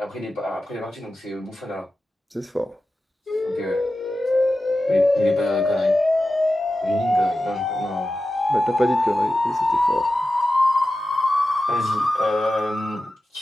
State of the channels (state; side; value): normal; both; correlation 0.93